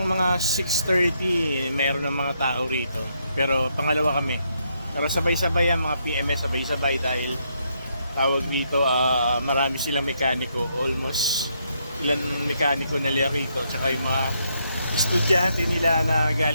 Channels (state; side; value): inverted; both; correlation -0.76